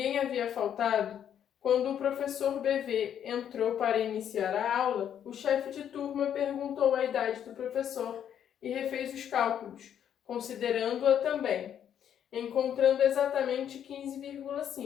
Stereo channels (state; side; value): quieter; right; 9.4 dB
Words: havia faltado, quando o professor BV entrou para iniciar a aula, o chefe de turma perguntou a idade do professor e refez os cálculos, considerando-a também, encontrando exatamente